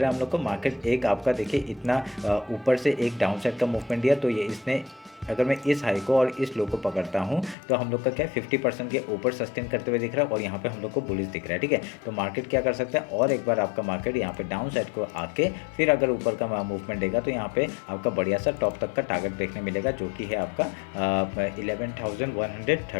है हम लोग को, मार्केट एक आपका देखिए इतना ऊपर से एक डाउन साइड का मूवमेंट दिया, तो ये इसने अगर मैं इस हाई को और इस लो को पकड़ता हूँ तो हम लोग का क्या 50% के ऊपर सस्टेन करते हुए दिख रहा है और यहाँ पे हम लोग को बुलिश दिख रहा है। ठीक है, तो मार्केट क्या कर सकता है, और एक बार आपका मार्केट यहाँ पे डाउन साइड को आके फिर अगर ऊपर का मूवमेंट देगा तो यहाँ पे आपका बढ़िया सा टॉप तक का टारगेट देखने मिलेगा, जो कि है आपका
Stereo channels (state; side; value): drops out; right; at 7.6 s